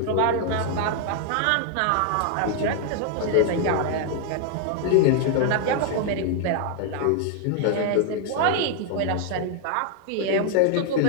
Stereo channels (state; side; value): different; both; correlation 0.00